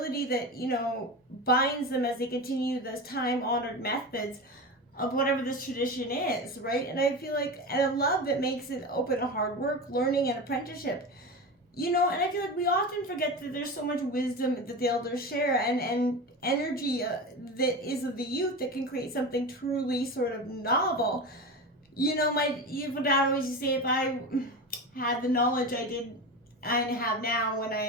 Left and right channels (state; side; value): normal; both; correlation 0.25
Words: that, binds them as they continue those time-honored methods of whatever this tradition is, right? And I feel like, and a love that makes it open to hard work, learning, and apprenticeship. And I feel like we often forget that there's so much wisdom that the elders share and energy that is of the youth that can create something truly sort of novel. My dad always used to say, if I had the knowledge I have now when